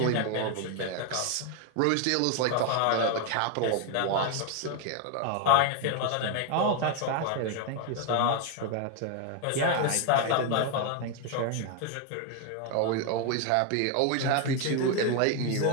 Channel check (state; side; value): different; both; correlation 0.01